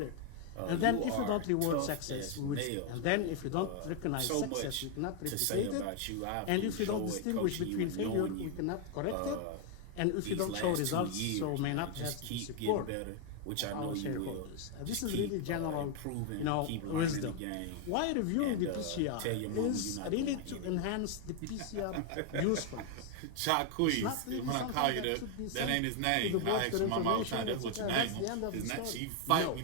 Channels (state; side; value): different; both; correlation 0.01